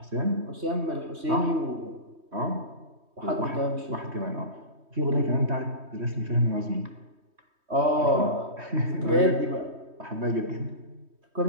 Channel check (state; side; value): late; left; 3.2 ms